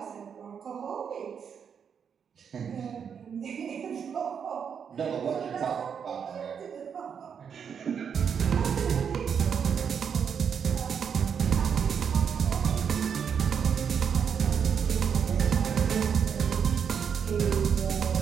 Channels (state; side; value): quieter; left; 7.2 dB